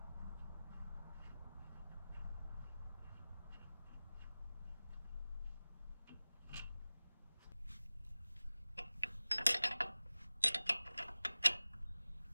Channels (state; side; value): inverted; both; correlation -0.98